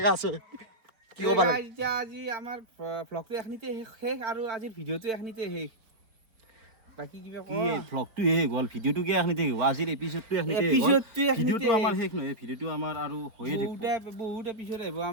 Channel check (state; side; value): late; left; 4.4 ms